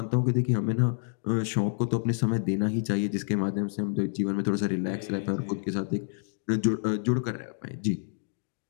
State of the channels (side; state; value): right; silent; digital silence